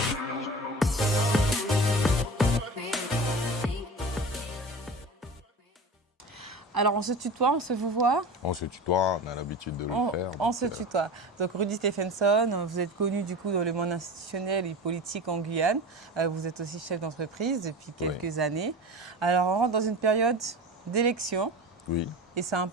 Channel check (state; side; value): normal; both; correlation 0.32